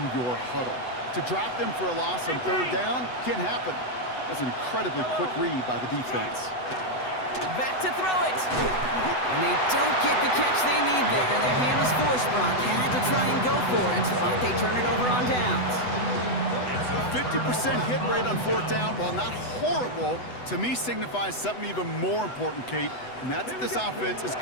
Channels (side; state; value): right; late; 8.0 ms